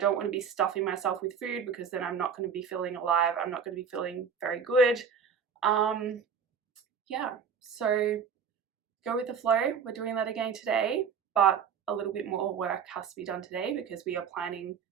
want to be stuffing myself with food, because then I'm not going to be feeling alive. I'm not going to be feeling very good. Yeah, so go with the flow. We're doing that again today, but a little bit more work has to be done today because we are planning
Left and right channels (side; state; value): left; quieter; 6.7 dB